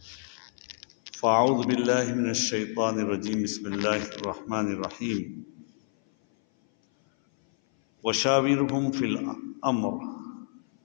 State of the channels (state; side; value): silent; right; 57 dB below the other